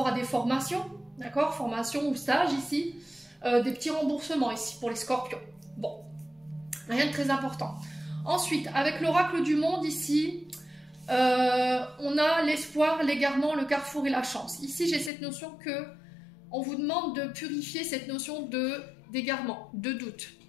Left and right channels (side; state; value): right; drops out; at 15.1 s